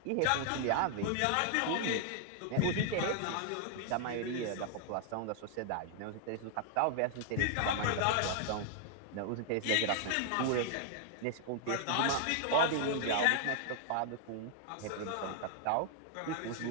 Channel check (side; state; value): both; different; correlation 0.00